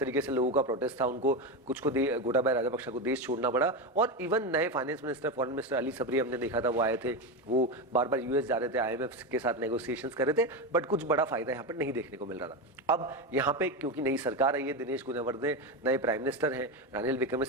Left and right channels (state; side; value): normal; both; correlation 0.15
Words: से लोगों का प्रोटेस्ट था, उनको कुछ को गोटाबाया राजापक्षा को देश छोड़ना पड़ा। और इवन नए finance minister, foreign minister Ali Sabry हमने देखा था, वो आए थे, वो बार बार US जा रहे थे, IMF के साथ नेगोशिएशंस कर रहे थे, बट कुछ बड़ा फायदा यहाँ पर नहीं देखने को मिल रहा था। अब यहाँ पे क्योंकि नई सरकार आई है, दिनेश गुणवर्धने नए प्राइम मिनिस्टर हैं, रानिल